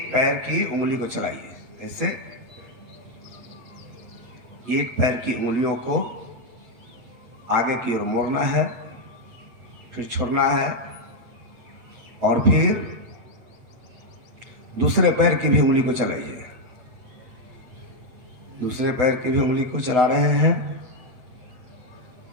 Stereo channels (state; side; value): late; left; 8.0 ms